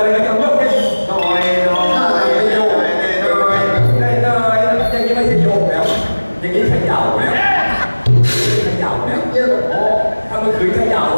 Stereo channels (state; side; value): inverted; both; correlation -1.00